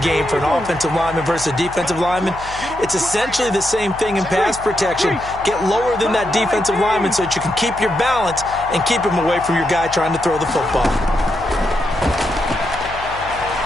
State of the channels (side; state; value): left; noise; hum, 16 dB below the sound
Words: for an offensive lineman versus a defensive lineman. It's essentially the same thing in pass protection. Get lower than that defensive lineman so that you can keep your balance and keep him away from your guy trying to throw the football.